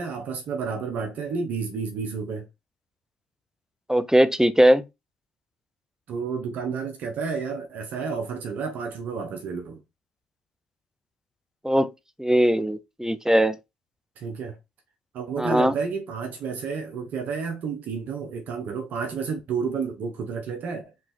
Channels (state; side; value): normal; both; correlation 0.87